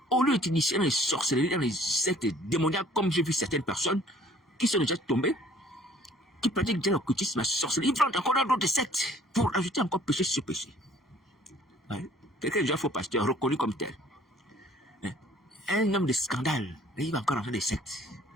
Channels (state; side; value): normal; both; correlation 0.56